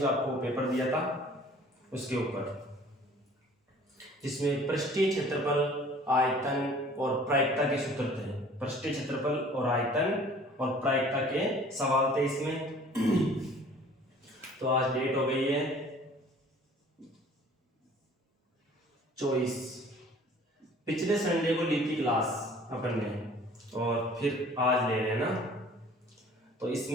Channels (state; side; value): normal; both; correlation 0.50